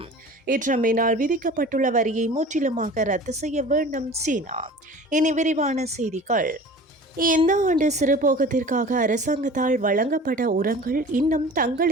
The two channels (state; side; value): normal; both; correlation 0.41